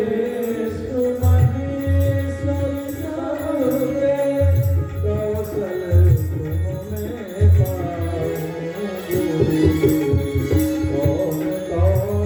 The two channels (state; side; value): identical; both; correlation 1.00